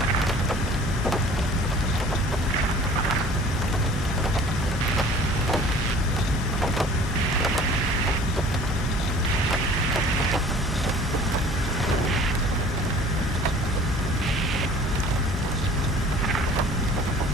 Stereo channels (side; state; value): both; normal; correlation 0.48